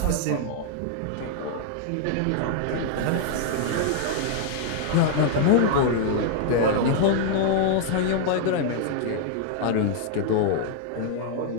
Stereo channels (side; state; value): both; different; correlation 0.00